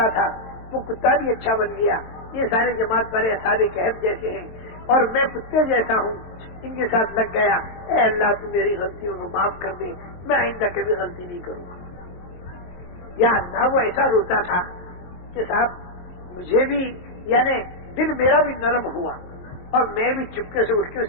تھا، وہ کتا بھی اچھا بن گیا، یہ سارے جماعت والے اصحاب کہف جیسے ہیں اور میں کتے جیسا ہوں، ان کے ساتھ لگ گیا۔ اے اللہ تو میری غلطیوں کو معاف کر دے، میں آئندہ کبھی غلطی نہیں کروں گا۔ یا اللہ وہ ایسا روتا تھا کہ صاحب مجھے بھی یعنی دل میرا بھی نرم ہوا اور میں بھی چپکے سے اٹھ کے اس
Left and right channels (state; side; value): late; right; 23 ms